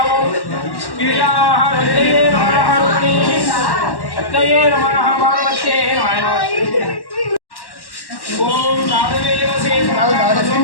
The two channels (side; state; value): right; late; 1.1 ms